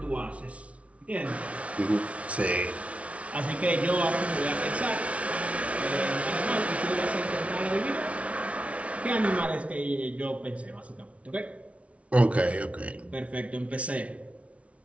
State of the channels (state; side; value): late; left; 0.064 ms